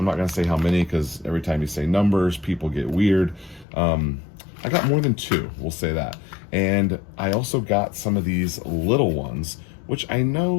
not going to say how many because every time you say numbers, people get weird. I got more than two, we'll say that. And I also got some of these little ones, which I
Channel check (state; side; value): drops out; right; at 3.7 s